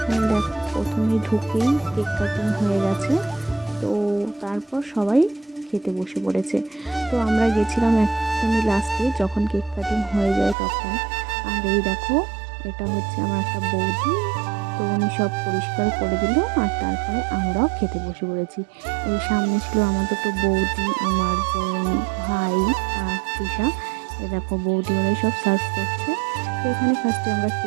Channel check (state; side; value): drops out; left; at 10.6 s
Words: দেখো প্রথমে ঢুকেই কেক কাটিং হয়ে গেছে। তো তারপর সবাই খেতে বসে পড়েছে। তো আমরা গেছিলাম একদমই লাস্টে যখন কেক কাটিং হয়ে যায় তখন। আর এই দেখো এটা হচ্ছে আমার একটা বৌদি। তো উনি সব পরিষ্কার করে দিল আর তারপরে আমরাও খেতে বসে পড়েছি। এই সামনে ছিল আমার দুটো বৌদি, আমার বোন, ভাই আর তৃষা। এ দেখো বৌদি ওরাই সব সার্ভ করছে। তো এখানে ফার্স্টে আমরা